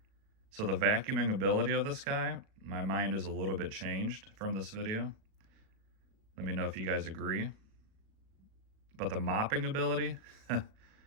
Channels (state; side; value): late; left; 37 ms